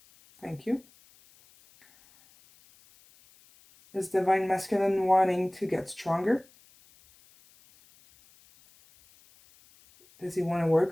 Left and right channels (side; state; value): left; noise; hiss, 29 dB below the sound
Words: Thank you. Is Divine Masculine wanting to get stronger? Does he want to